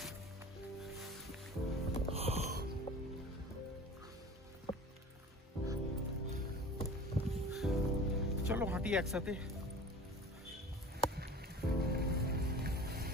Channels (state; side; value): normal; both; correlation 0.40